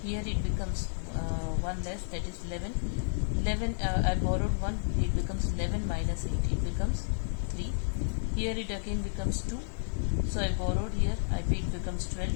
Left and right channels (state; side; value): silent; right; digital silence